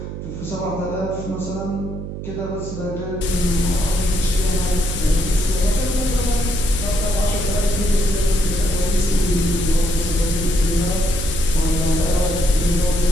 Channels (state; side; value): noise; right; hum, 8 dB below the sound